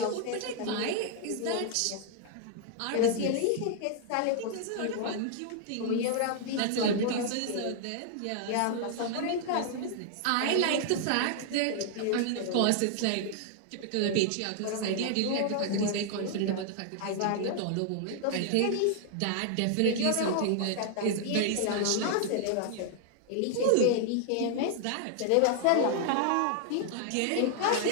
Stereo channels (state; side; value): different; both; correlation 0.00